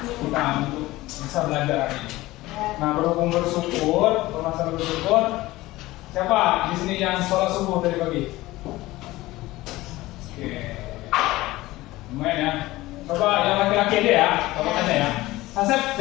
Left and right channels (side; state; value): right; quieter; 18.3 dB